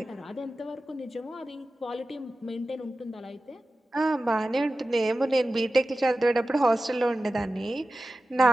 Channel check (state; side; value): normal; both; correlation 0.95